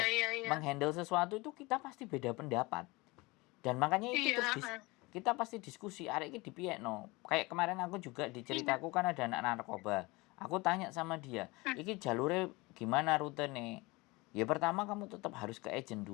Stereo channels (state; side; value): quieter; right; 23.6 dB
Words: menghandle sesuatu itu kita pasti beda pendapat, dan makanya itu terus kita pasti diskusi, arek iki dipiekno. Kayak kemarin aku juga diceritaku kan ada anak narkoba, aku tanya sama dia, iki jalure gimana rute nih, ya pertama kamu tetap harus ke agent